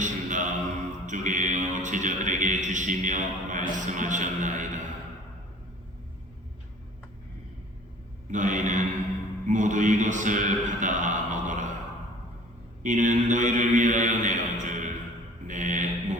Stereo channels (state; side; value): normal; both; correlation 0.48